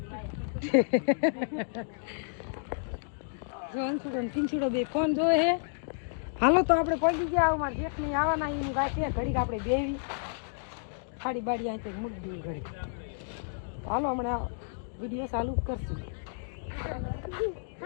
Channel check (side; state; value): right; silent; digital silence